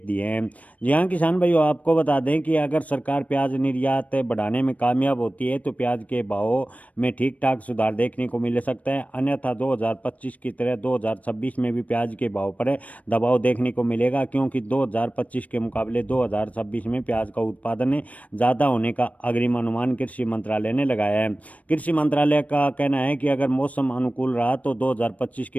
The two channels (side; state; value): right; late; 0.069 ms